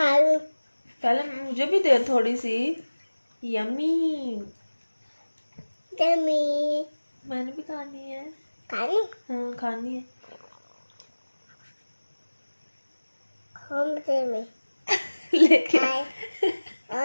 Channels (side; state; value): both; inverted; correlation -1.00